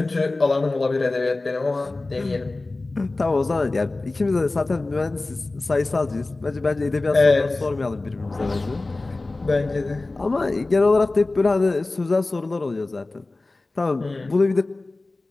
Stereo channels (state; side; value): quieter; right; 3.2 dB